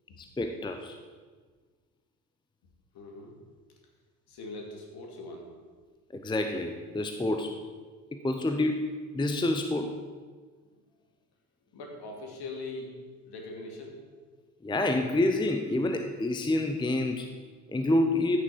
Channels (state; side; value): normal; both; correlation 0.67